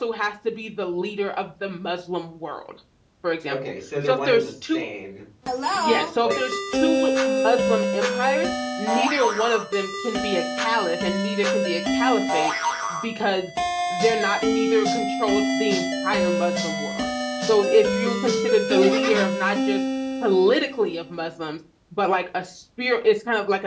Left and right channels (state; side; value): identical; both; correlation 1.00